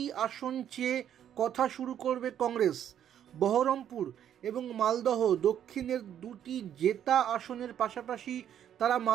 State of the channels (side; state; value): left; quieter; 10.0 dB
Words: আসন চেয়ে কথা শুরু করবে কংগ্রেস। বহরমপুর এবং মালদহ দক্ষিণের 2টি জেতা আসনের পাশাপাশি তারা